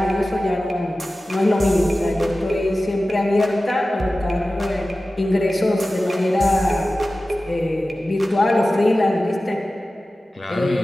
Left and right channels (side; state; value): both; normal; correlation 0.95